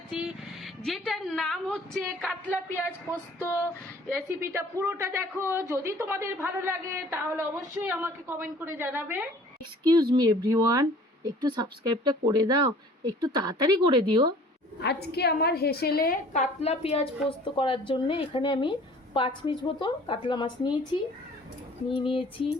যেটার নাম হচ্ছে কাতলা পেঁয়াজ পোস্ত। রেসিপিটা পুরোটা দেখো, যদি তোমাদের ভালো লাগে তাহলে অবশ্যই আমাকে কমেন্ট করে জানাবে। এক্সকিউজ মি এভরিওয়ান, একটু সাবস্ক্রাইবটা করে দাও, একটু তাড়াতাড়ি করে দিও। আজকে আমার হেসেলে কাতলা পেঁয়াজ পোস্ত করার জন্য এখানে আমি 5 পিস মতো কাতলা মাছ নিয়েছি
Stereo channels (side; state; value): both; normal; correlation 0.51